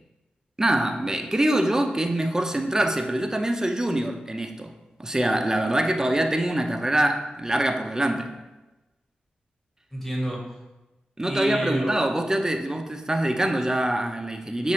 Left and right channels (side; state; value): both; normal; correlation 0.93